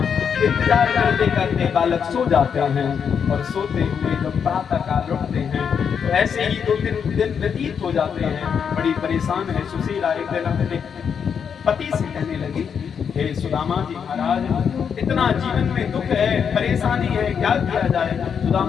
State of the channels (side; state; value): right; quieter; 7.1 dB